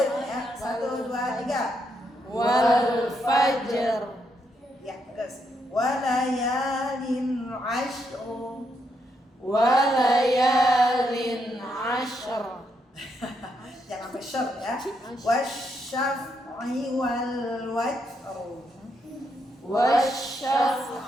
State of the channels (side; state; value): both; normal; correlation 0.78